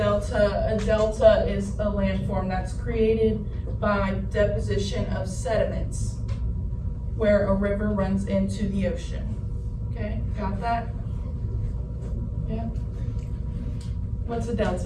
A delta is a landform that's created by deposition of sediments where a river runs into the ocean. Okay, got that? Yeah? What's a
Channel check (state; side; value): identical; both; correlation 1.00